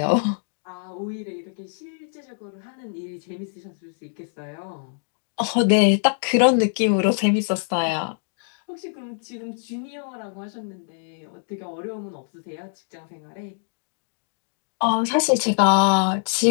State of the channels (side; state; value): right; silent; digital silence